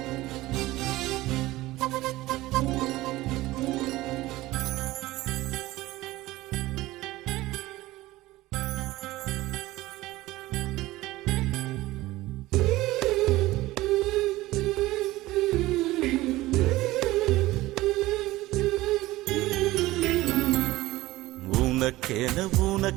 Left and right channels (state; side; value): quieter; left; 18.0 dB